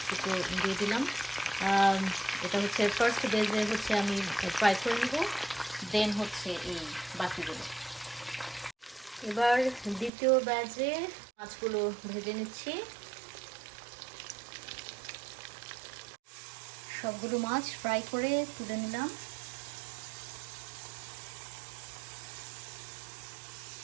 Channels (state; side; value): drops out; left; at 10.1 s